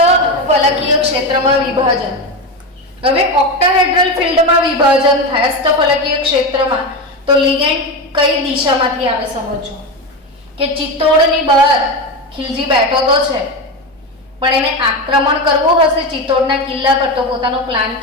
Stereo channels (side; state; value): both; normal; correlation 0.17